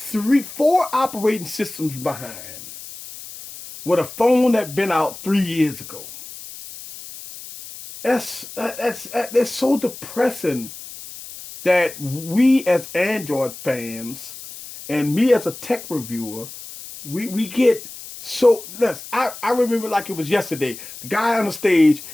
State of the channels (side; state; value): left; noise; hiss, 14 dB below the sound